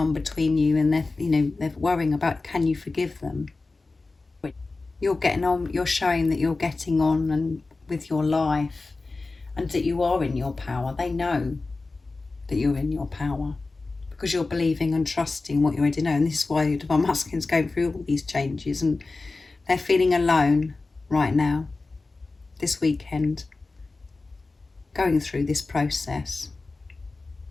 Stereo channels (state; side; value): quieter; right; 3.6 dB